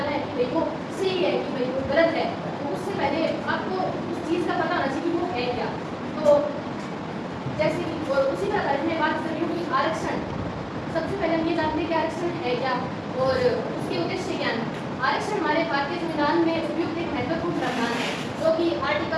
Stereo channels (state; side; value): identical; both; correlation 1.00